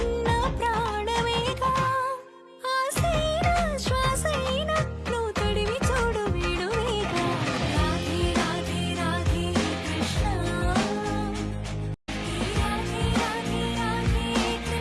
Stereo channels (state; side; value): identical; both; correlation 1.00